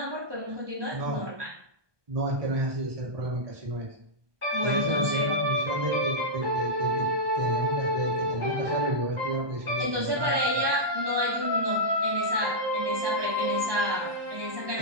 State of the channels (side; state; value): left; late; 1.2 ms